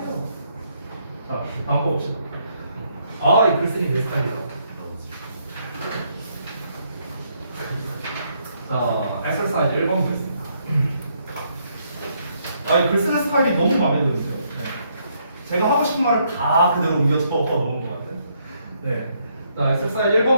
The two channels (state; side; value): inverted; both; correlation -0.73